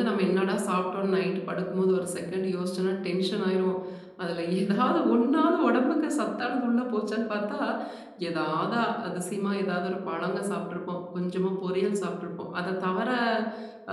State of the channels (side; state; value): both; identical; correlation 1.00